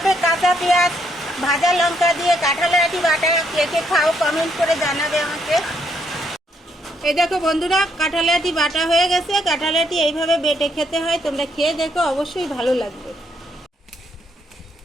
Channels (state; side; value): normal; both; correlation 0.73